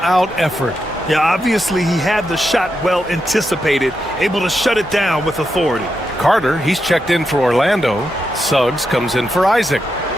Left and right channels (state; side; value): normal; both; correlation 0.85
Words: effort. Yeah, obviously he had the shot well anticipated, able to shut it down with authority. Carter, he's checked in for Orlando. Suggs comes in for Isaac.